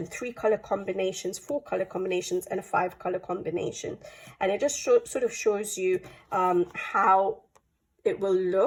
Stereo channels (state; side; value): identical; both; correlation 1.00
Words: 3 color combinations, 4 color combinations, and a 5 color combination. And it just sort of shows you how it will